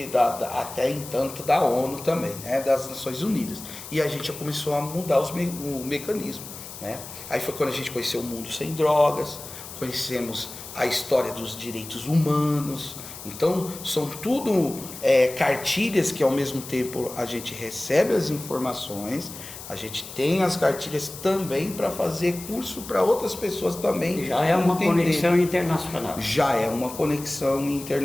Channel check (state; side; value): noise; left; hiss, 13 dB below the sound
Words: até entanto da ONU também, né, das Nações Unidas. E a gente já começou a mudar o mecanismo, né? Aí foi quando a gente conheceu o mundo sem drogas, conhecemos a história dos direitos humanos. Então, são tudo cartilhas que ao mesmo tempo a gente recebe as informações, a gente tem as cartilhas também para fazer curso para outras pessoas também. Já é uma conexão internacional. Já é uma conexão